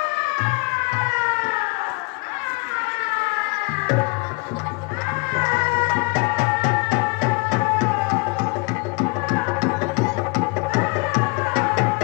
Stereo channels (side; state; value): right; quieter; 28.8 dB